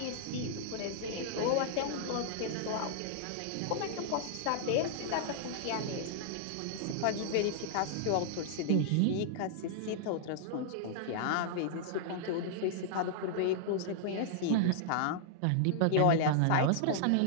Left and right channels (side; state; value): both; different; correlation -0.01